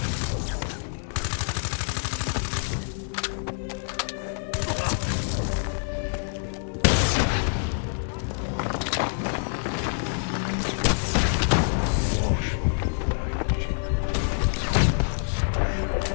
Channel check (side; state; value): right; silent; 57 dB below the other